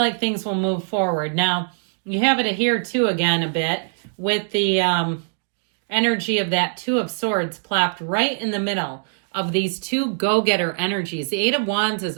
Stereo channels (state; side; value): silent; left; digital silence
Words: things will move forward. Now, you have it here too again a bit with the energy of that Two of Swords plopped right in the middle of these two go-getter energies. The Eight of Wands is